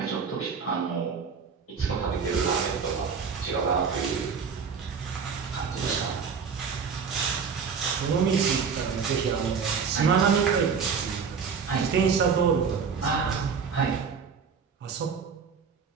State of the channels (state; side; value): quieter; left; 6.0 dB